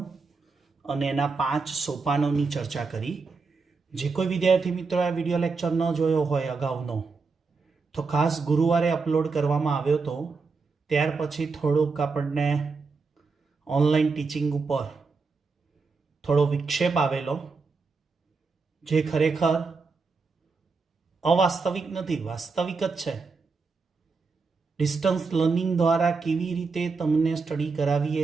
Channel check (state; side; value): quieter; left; 4.5 dB